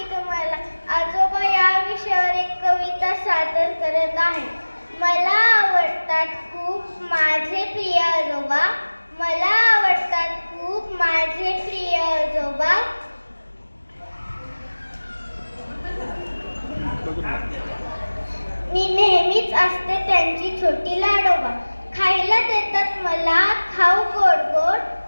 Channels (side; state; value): both; inverted; correlation -1.00